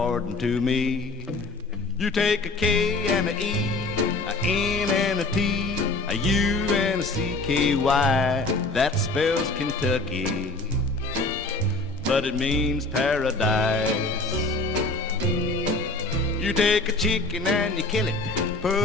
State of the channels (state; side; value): quieter; right; 3.1 dB